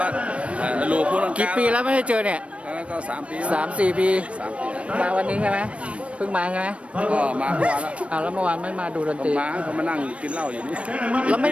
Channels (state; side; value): late; left; 0.062 ms